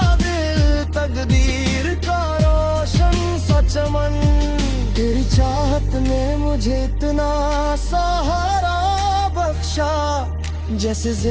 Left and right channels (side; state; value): both; identical; correlation 1.00